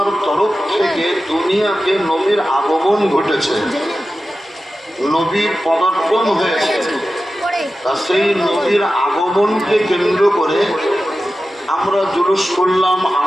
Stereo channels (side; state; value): both; normal; correlation 0.94